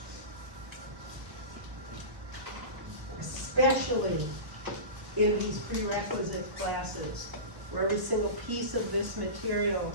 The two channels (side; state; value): left; late; 1.2 ms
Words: especially in these prerequisite classes, where every single piece of this material